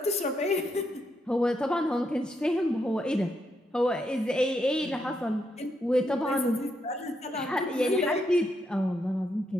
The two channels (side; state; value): both; normal; correlation 0.79